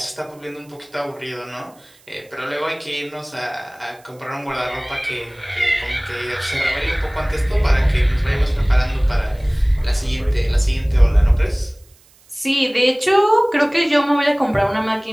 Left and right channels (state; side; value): noise; right; hiss, 29 dB below the sound